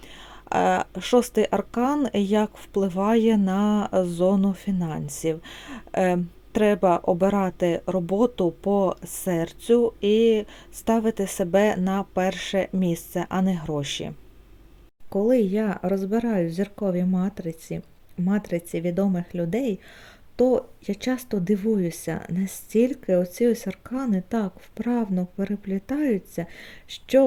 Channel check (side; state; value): both; identical; correlation 1.00